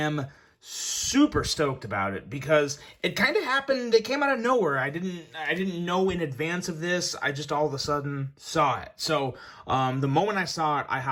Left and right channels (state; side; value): identical; both; correlation 1.00